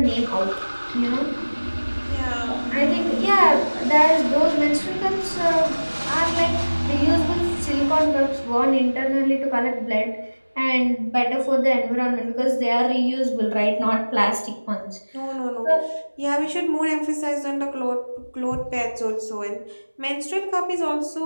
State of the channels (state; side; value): inverted; both; correlation -1.00